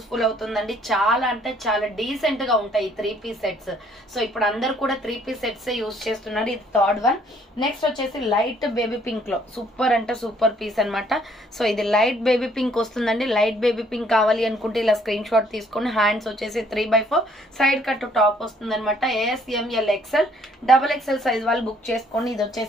అవుతుందండి. చాలా అంటే చాలా డీసెంట్ గా ఉంటాయి ఈ 3 పీస్ సెట్స్. సో ఇప్పుడు అందరు కూడా 3 పీస్ సెట్స్ యూస్ చేస్తున్నారు. ఇది థర్డ్ వన్. నెక్స్ట్ వచ్చేసి లైట్ బేబీ పింక్ లో సూపర్ అంటే సూపర్ పీస్ అనమాట. సో ఇది లైట్ బేబీ పింక్ వస్తుందండి. లైట్ బేబీ పింక్ కావాలి అనుకుంటే ఇలా స్క్రీన్ షాట్ తీసుకొని, హ్యాండ్స్ వచ్చేసి 3/4, సైడ్ కట్ టాప్ వస్తుంది అనమాట. A S, M L, XL, double XL size వాళ్ళు బుక్ చేసుకోండి. ఇది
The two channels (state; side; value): normal; both; correlation 0.63